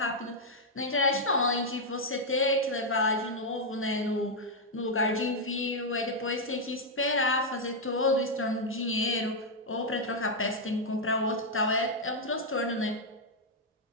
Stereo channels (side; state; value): both; normal; correlation -0.02